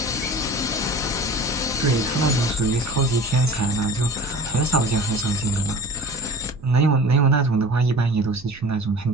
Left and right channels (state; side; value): noise; right; rumble, 22 dB below the sound